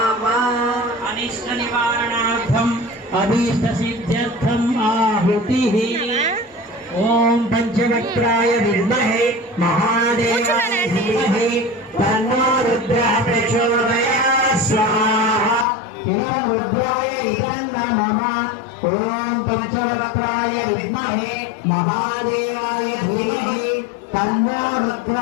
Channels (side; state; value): right; drops out; at 15.7 s